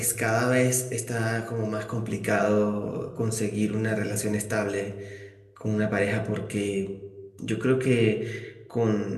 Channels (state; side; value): identical; both; correlation 1.00